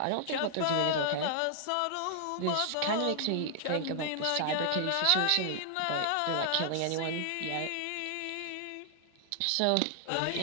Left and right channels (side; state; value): both; different; correlation 0.00